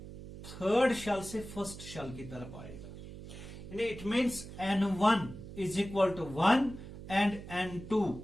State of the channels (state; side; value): noise; right; hum, 12 dB below the sound